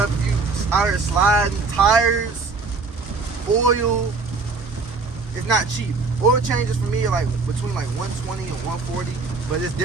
you out here sliding, tires, oil, it's not cheap. Oil changes for me are like between like 120 and 140, but it's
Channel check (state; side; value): quieter; left; 4.2 dB